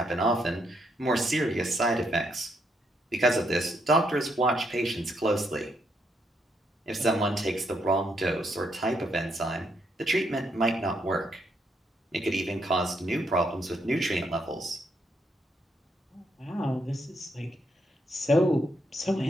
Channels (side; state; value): both; normal; correlation 0.76